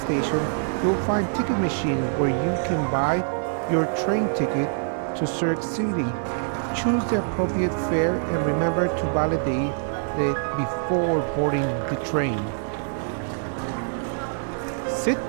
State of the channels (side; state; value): left; silent; digital silence